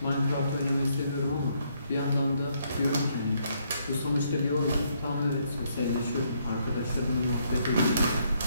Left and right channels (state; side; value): inverted; both; correlation -0.72